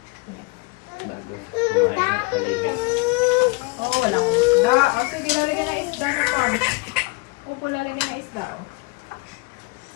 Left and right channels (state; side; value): quieter; right; 27.9 dB